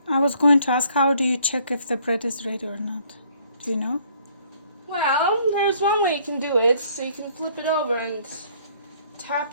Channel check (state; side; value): inverted; both; correlation -0.62